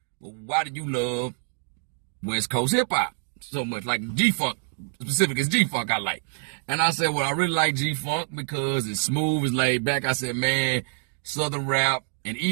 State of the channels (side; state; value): left; silent; digital silence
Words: Well, why do you love West Coast hip hop so much? Like GFunk, specific is GFunk I like. And I said, well, I really like GFunk because it's smooth, it's laid back. I said, man, Southern rap and